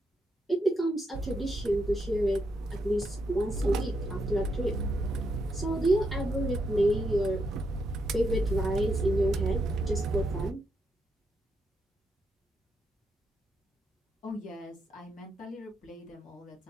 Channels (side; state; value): both; normal; correlation 0.80